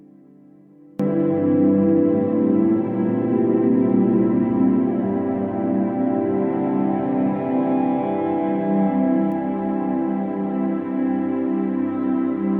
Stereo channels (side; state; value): both; identical; correlation 1.00